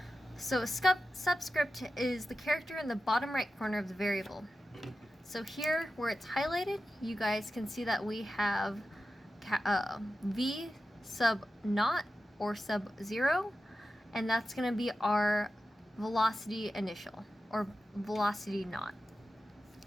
So a subscript is the character in the bottom right corner of the variable. So here, where it's highlighted, you guys can see that we have v sub naught or sub 0, and that's going to be our velocity initial, or velocity naught.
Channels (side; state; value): both; normal; correlation 0.93